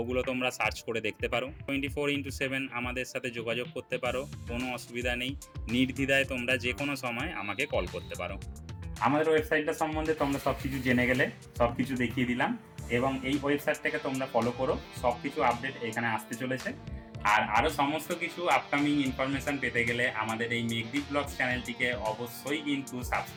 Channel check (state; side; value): identical; both; correlation 1.00